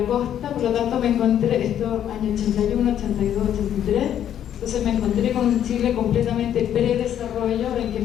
costa. Por lo tanto me encontré, esto año 81, 82, 83, entonces me encontré con un Chile completamente predesarrollo, en que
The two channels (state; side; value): quieter; right; 10.2 dB